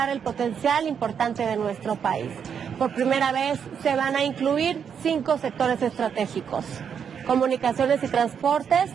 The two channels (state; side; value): quieter; left; 7.4 dB